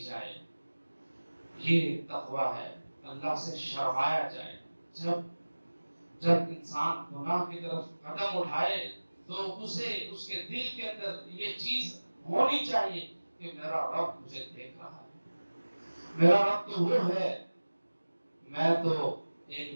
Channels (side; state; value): both; inverted; correlation -1.00